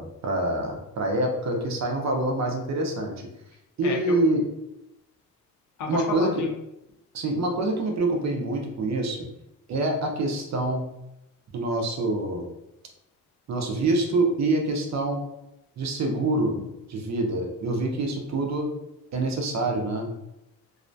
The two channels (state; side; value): normal; both; correlation 0.18